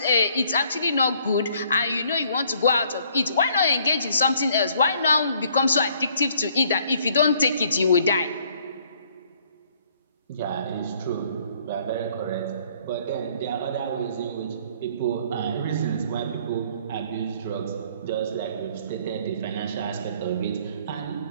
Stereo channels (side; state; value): both; inverted; correlation -0.62